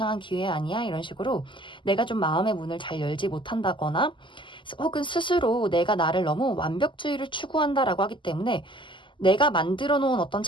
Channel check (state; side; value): late; right; 0.24 ms